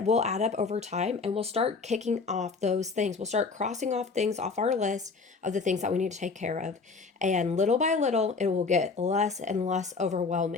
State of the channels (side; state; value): right; quieter; 4.4 dB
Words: will add up over time, and we'll start kicking off those things. We'll start crossing off things off our list of the things that we need to take care of. And little by little, it will get less and less